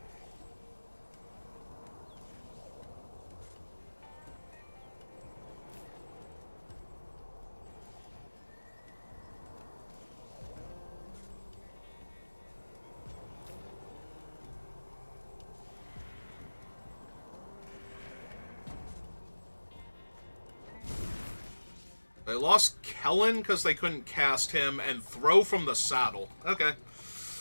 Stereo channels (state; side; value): inverted; both; correlation -1.00